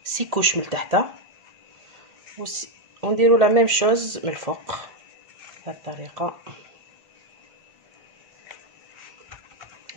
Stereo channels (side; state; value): left; late; 1.8 ms